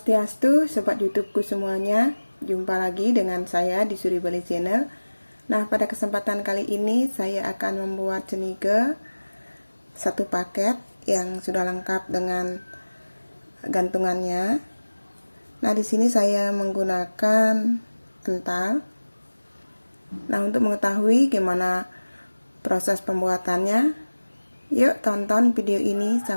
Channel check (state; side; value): inverted; both; correlation -1.00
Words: Sobat YouTubeku semuanya. Jumpa lagi dengan saya di Suri Bali Channel. Nah, pada kesempatan kali ini saya akan membuat cenike satu paket yang sudah lengkap dengan gantungannya. Nah, di sini saya menggunakan ental. Nah, untuk mengetahui gimana proses pembuatannya, yuk tonton video ini